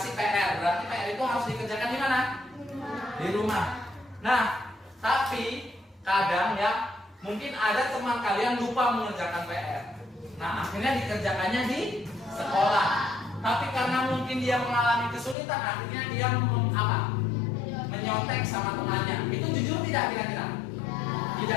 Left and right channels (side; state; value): right; drops out; at 15.4 s